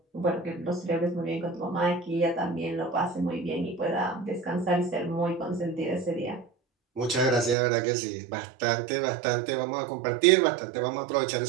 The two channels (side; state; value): left; drops out; at 7.6 s